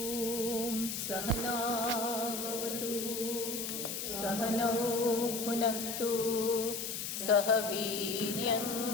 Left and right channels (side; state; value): left; noise; hiss, 4 dB below the sound